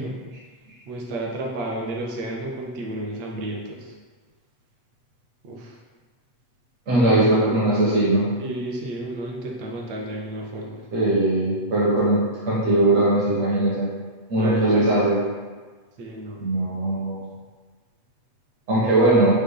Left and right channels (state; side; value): late; left; 8.1 ms